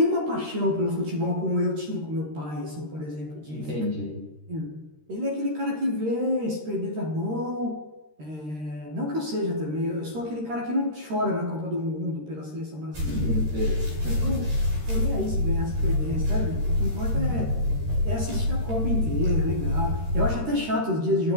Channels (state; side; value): late; left; 13 ms